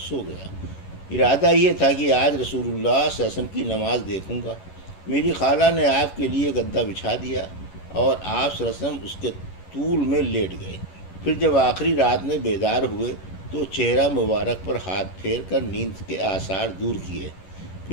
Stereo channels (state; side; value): late; right; 11 ms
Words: گیا۔ ارادہ یہ تھا کہ آج رسول اللہ صلی اللہ علیہ وسلم کی نماز دیکھوں گا۔ میری خالہ نے آپ کے لیے گدا بچھا دیا اور آپ صلی اللہ علیہ وسلم اس کے طول میں لیٹ گئے۔ پھر جب آخری رات میں بیدار ہوئے تو چہرہ مبارک پر ہاتھ پھیر کر نیند کے آثار دور کیے،